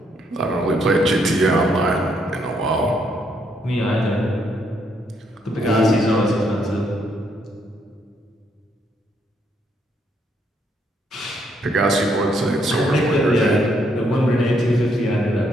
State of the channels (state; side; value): normal; both; correlation 0.73